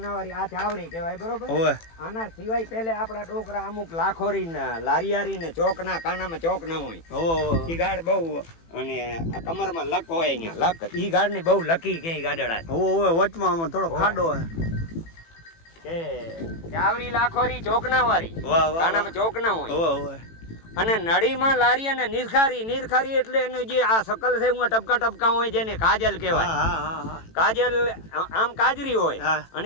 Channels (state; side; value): late; right; 18 ms